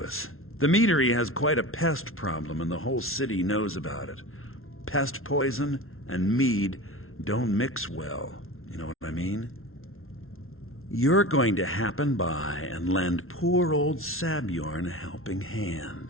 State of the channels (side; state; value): right; late; 0.62 ms